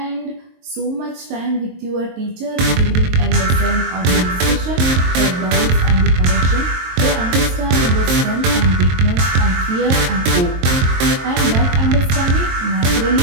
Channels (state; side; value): late; left; 22 ms